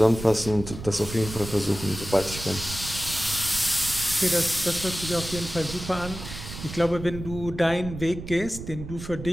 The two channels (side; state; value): right; noise; rumble, 10 dB below the sound